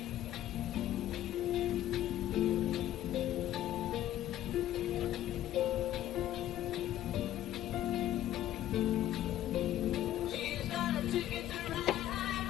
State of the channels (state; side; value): quieter; right; 12.8 dB